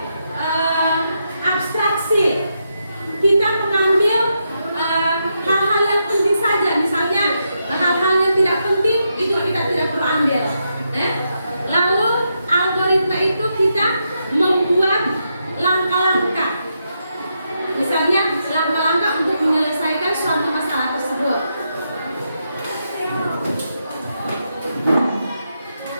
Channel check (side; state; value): both; inverted; correlation -0.83